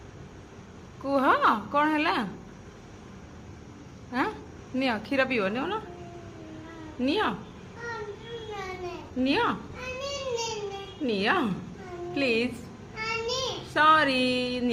कुह कौन है हाँ नियो क्षीर पीव नियो ना neo neo neo please sorry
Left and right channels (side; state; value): both; identical; correlation 1.00